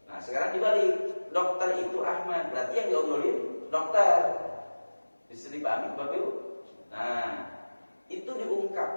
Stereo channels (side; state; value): both; inverted; correlation -1.00